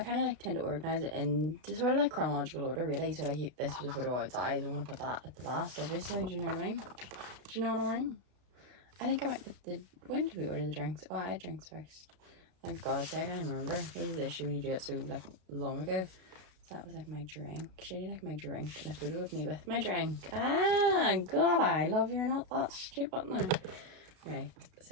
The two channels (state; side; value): late; left; 32 ms